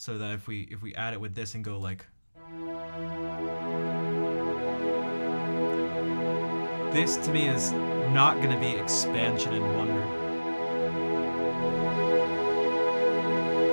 that if we add it with this and go like, this to me is not going to be expansion and wonder.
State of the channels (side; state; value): both; inverted; correlation -1.00